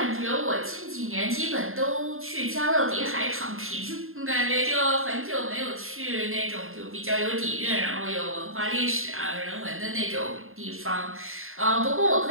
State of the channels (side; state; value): left; late; 0.61 ms